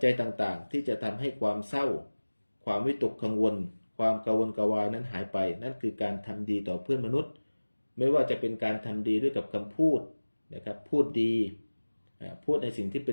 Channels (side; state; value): both; inverted; correlation -1.00